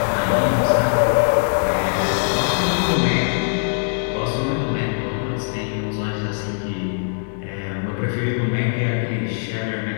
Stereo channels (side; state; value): right; silent; digital silence